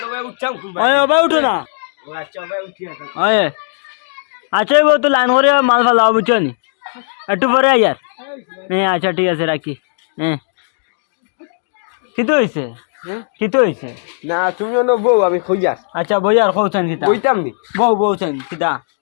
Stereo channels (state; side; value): silent; right; digital silence